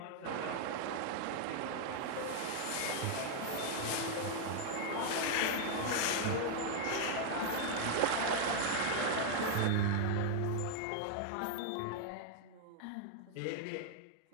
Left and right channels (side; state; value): both; different; correlation 0.00